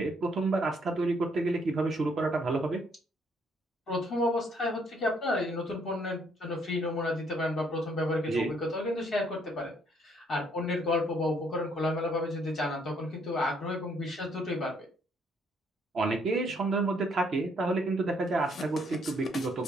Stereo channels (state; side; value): normal; both; correlation 0.68